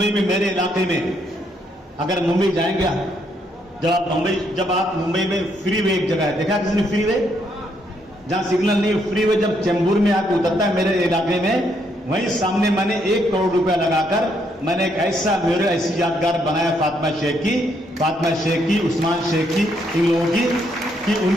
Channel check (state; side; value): normal; both; correlation 0.73